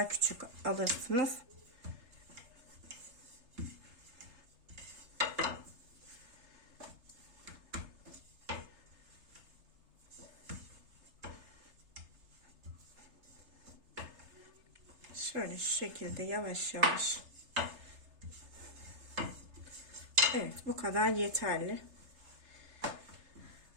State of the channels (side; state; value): left; late; 3.3 ms